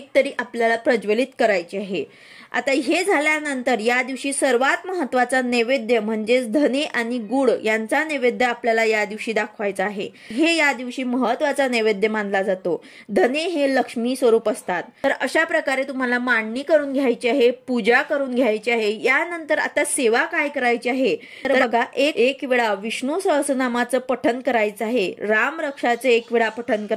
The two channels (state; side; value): identical; both; correlation 1.00